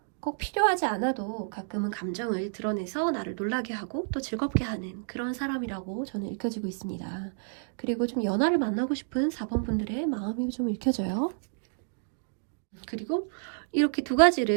꼭 필요하지 않아도 가끔은 감정을 드러내서 나를 놀라게 하고 또 즐겁게 하는 그런 사람이라고 저는 읽혀지고 있습니다. 그리고 좀 연하를 만나고 싶은 4번 분들의 마음이 좀 읽혀져요. 그리고 이렇게 두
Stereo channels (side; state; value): left; silent; digital silence